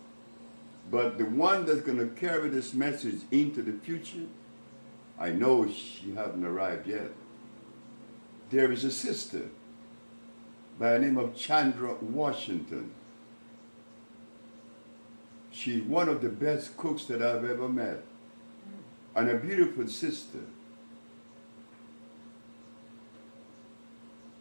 But the one that's going to carry this message into the future, I know she hasn't arrived yet. There is a sister by the name of Chandra Washington. She's one of the best cooks that I've ever met. And a beautiful sister.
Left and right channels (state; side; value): inverted; both; correlation -1.00